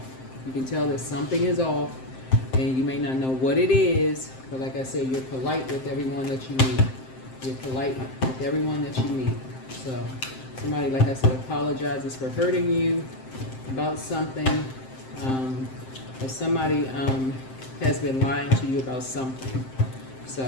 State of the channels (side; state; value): right; late; 7.7 ms